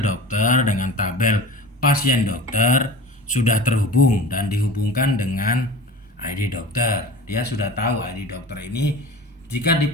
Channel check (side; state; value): both; normal; correlation 0.36